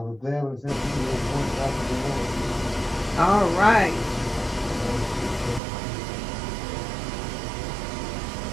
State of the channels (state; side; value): drops out; left; at 5.6 s